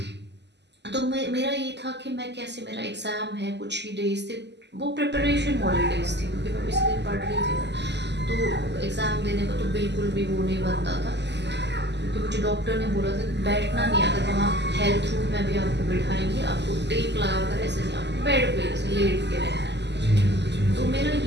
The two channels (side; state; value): left; late; 0.50 ms